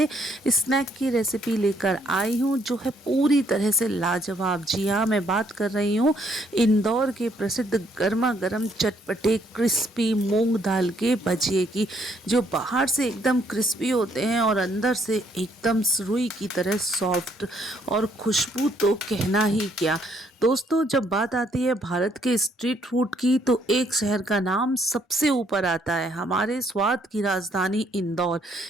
स्नैक की रेसिपी लेकर आई हूँ जो है पूरी तरह से लाजवाब। जी हाँ, मैं बात कर रही हूँ इंदौर के प्रसिद्ध गर्मा गर्म चटपटे क्रिस्पी मूंग दाल के भजिए की, जो बाहर से एकदम क्रिस्पी होते हैं और अंदर से एकदम रुई की तरह सॉफ्ट। और खुशबू तो कहना ही क्या। दोस्तों, जब बात आती है भारत के स्ट्रीट फूड की तो एक शहर का नाम सबसे ऊपर आता है, हमारे स्वाद की राजधानी इंदौर।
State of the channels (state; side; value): normal; both; correlation 0.69